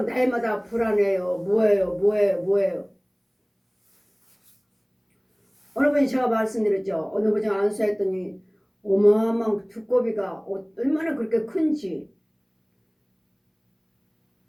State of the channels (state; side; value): identical; both; correlation 1.00